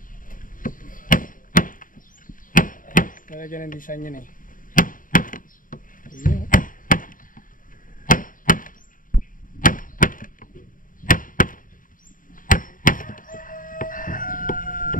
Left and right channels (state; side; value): late; right; 0.39 ms